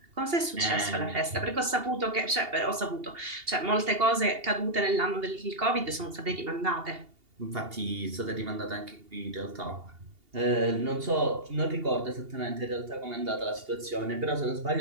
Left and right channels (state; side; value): late; left; 2.8 ms